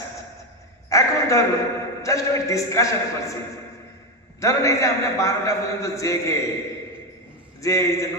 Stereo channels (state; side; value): normal; both; correlation 0.12